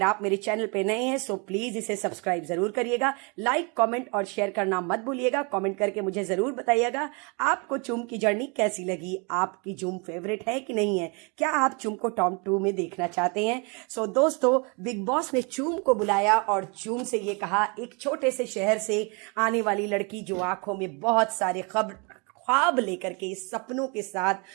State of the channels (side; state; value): left; quieter; 32.3 dB